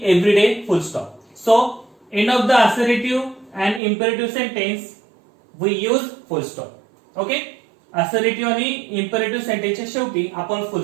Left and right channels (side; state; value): left; drops out; at 3.8 s